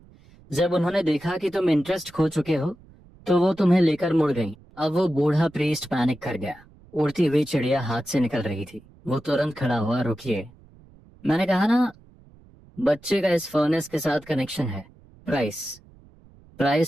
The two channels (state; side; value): noise; right; rumble, 26 dB below the sound